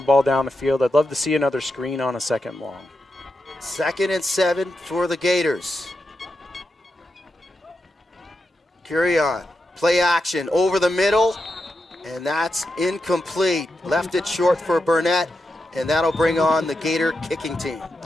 ball down the field. I'd love to see another screen on a 2nd and long. 2nd and 7 for the Gators. Curion, play action over the middle, and that's incomplete. Left it short for Burnett, and that'll bring on the Gator kicking team.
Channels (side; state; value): both; normal; correlation 0.87